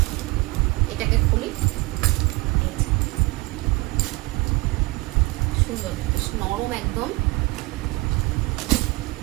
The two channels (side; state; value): left; quieter; 23.5 dB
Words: এটাকে খুলি, সুন্দর, বেশ নরম একদম।